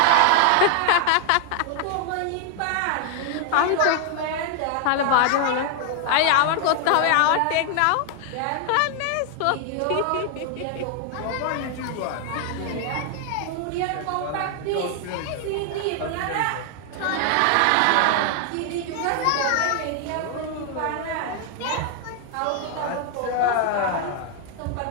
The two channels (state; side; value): different; both; correlation 0.00